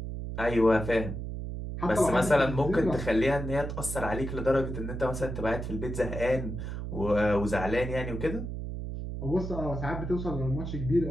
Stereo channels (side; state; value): right; noise; hum, 6 dB below the sound